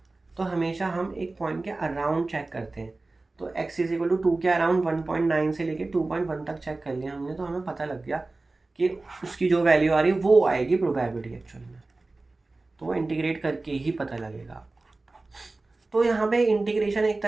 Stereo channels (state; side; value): quieter; left; 3.3 dB